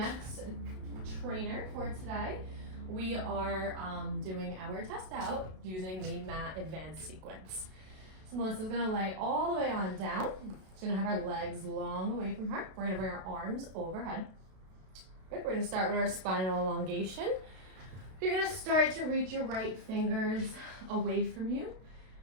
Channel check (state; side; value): late; left; 32 ms